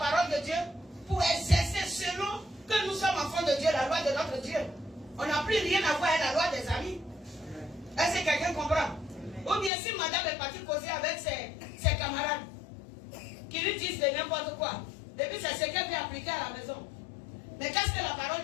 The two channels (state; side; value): drops out; right; at 9.7 s